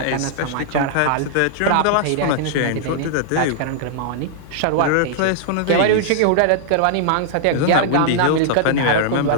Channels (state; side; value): different; both; correlation -0.01